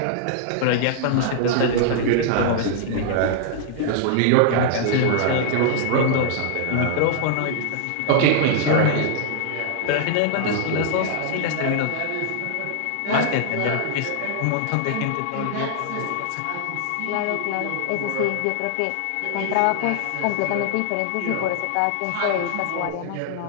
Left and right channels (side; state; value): both; different; correlation -0.01